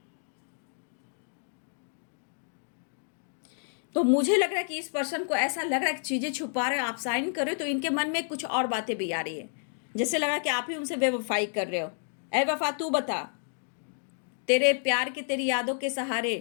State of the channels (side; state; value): right; silent; digital silence